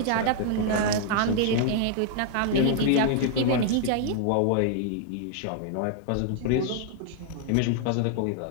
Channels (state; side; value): different; both; correlation 0.00